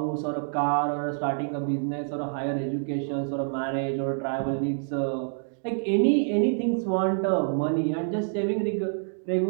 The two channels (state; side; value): silent; left; digital silence